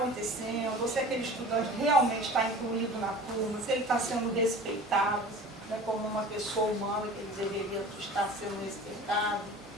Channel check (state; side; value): normal; both; correlation 0.40